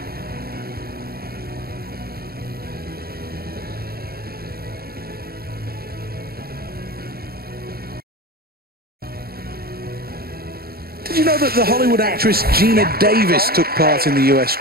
Did you know that the Hollywood actress Gina Davis took part in the US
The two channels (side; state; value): left; late; 0.45 ms